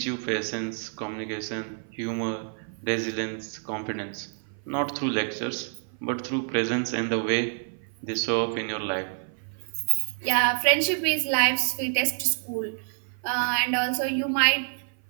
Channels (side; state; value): left; silent; 55 dB below the other